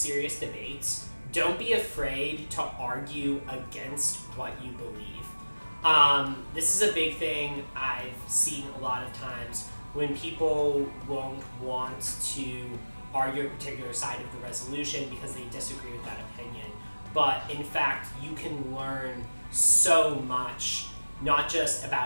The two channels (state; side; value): inverted; both; correlation -1.00